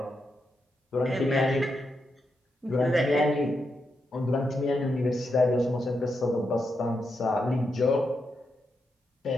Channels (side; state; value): both; normal; correlation 0.84